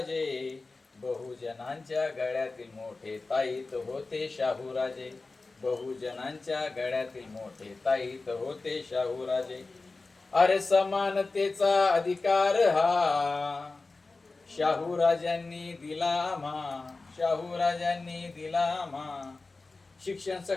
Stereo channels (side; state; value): right; quieter; 3.6 dB